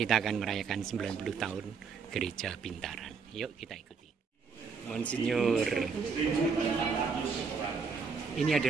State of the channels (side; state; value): left; quieter; 5.4 dB